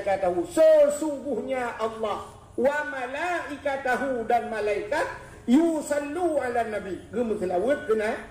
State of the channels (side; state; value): both; identical; correlation 1.00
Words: sesungguhnya Allah wa malaikatahu dan malaikat yusallu ala nabi gemuselawat